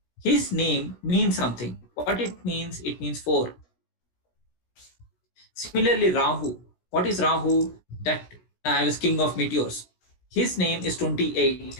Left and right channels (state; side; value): late; right; 16 ms